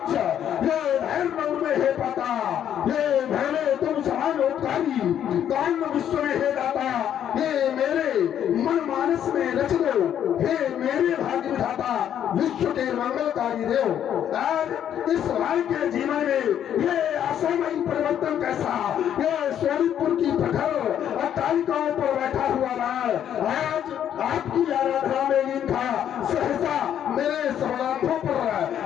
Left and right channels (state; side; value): quieter; right; 9.9 dB